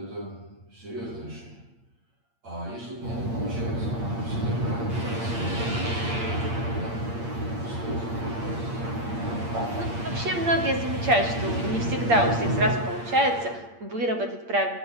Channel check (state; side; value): late; left; 8.6 ms